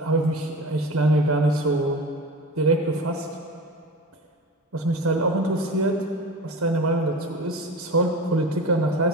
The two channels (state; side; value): normal; both; correlation 0.32